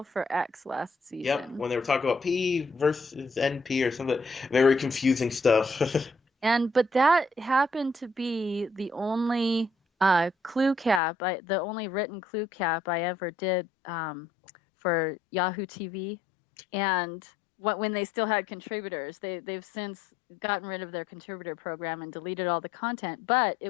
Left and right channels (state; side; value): drops out; right; at 11.0 s